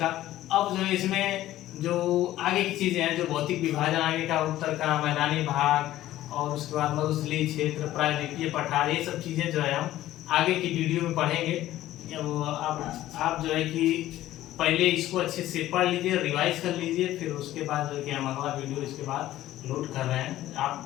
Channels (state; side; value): quieter; right; 14.4 dB